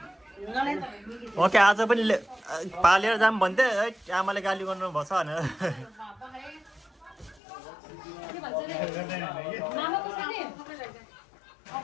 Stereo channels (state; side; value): drops out; right; at 7.4 s